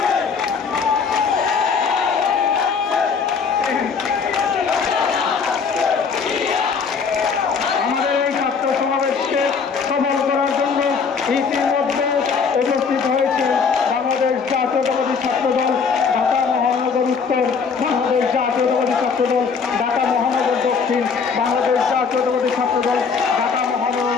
ইতিমধ্যে উপস্থিত হয়েছে বাংলাদেশ জাতীয়তাবাদী ছাত্রদল ঢাকা মহানগর উত্তর, বাংলাদেশ জাতীয়তাবাদী ছাত্রদল ঢাকা মহানগর দক্ষিণ, বাংলাদেশ জাতীয়তাবাদী ছাত্রদল ঢাকা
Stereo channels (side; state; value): right; quieter; 5.6 dB